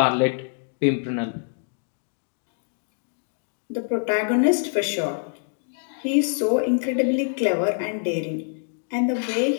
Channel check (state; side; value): silent; right; digital silence